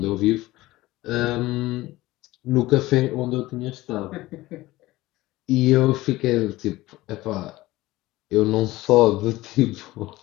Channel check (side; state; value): right; quieter; 18.1 dB